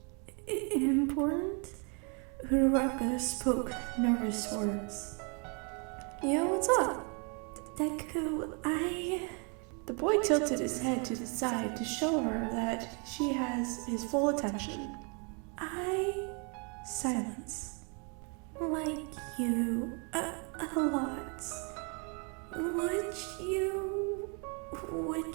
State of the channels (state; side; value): quieter; left; 35.7 dB